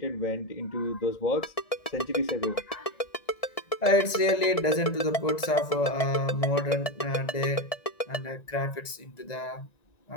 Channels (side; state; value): right; late; 1.9 ms